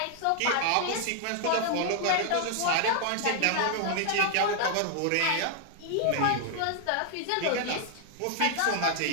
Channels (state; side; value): different; both; correlation 0.00